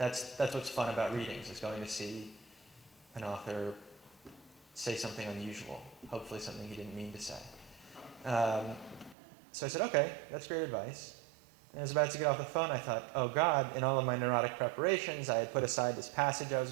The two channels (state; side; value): drops out; left; at 9.2 s